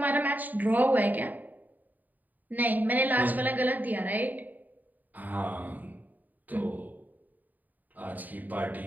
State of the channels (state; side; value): late; left; 0.084 ms